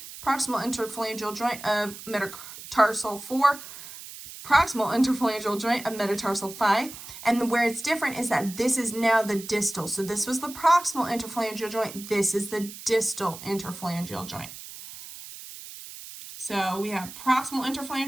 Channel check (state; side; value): noise; right; hiss, 13 dB below the sound